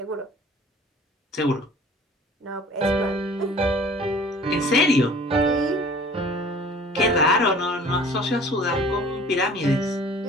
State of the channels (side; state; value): both; normal; correlation 0.47